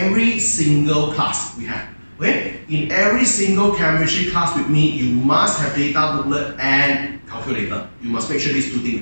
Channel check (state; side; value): inverted; both; correlation -1.00